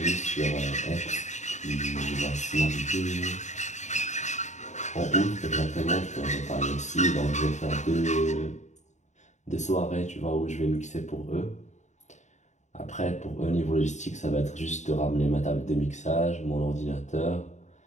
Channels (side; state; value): right; late; 0.34 ms